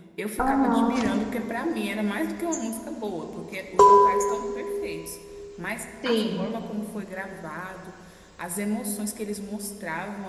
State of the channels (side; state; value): both; identical; correlation 1.00